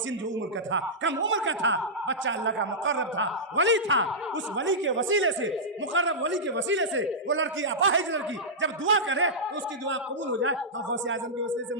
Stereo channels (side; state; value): both; normal; correlation -0.12